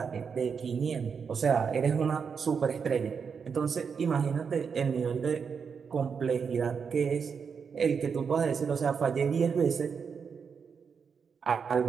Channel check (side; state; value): left; quieter; 6.2 dB